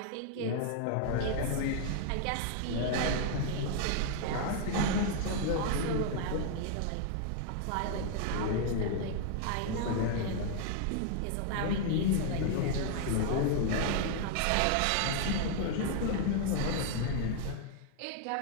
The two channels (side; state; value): both; different; correlation 0.00